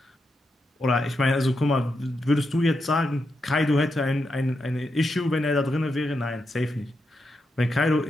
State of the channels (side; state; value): both; normal; correlation 0.85